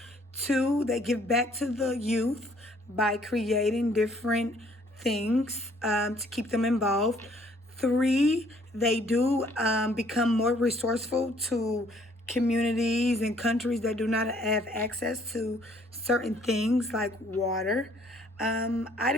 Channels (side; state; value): both; normal; correlation 0.62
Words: Two, they give back to the youth by creating different things to keep them involved. Three, they do become more resourceful to communities and countries that do not have access to certain things like water. I